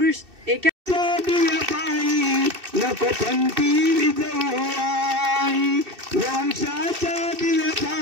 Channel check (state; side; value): late; left; 2.6 ms